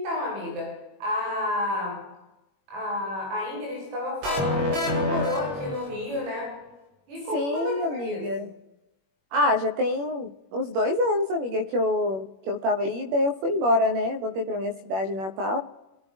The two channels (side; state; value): left; late; 21 ms